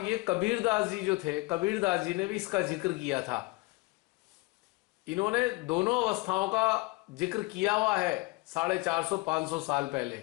ये कबीरदास जी जो थे, कबीरदास जी ने भी इसका जिक्र किया था। इन्होंने दोनों अवस्थाओं का जिक्र किया हुआ है 450-500 साल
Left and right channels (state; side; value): quieter; right; 23.9 dB